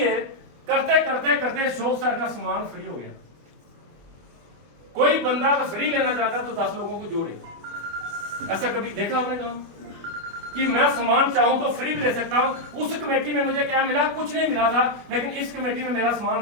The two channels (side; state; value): left; late; 25 ms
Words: करते करते करते शोक सर का सामान फ्री हो गया। कोई बंदा अगर फ्री लेना चाहता तो 10 लोगों को जोड़े। ऐसा कभी देखा आपने काम कि मैं सामान चाहूं तो फ्री भी ले सकता हूं? उस कमेटी में मुझे क्या मिला? कुछ नहीं मिला था, लेकिन इस कमेटी में मेरा सामान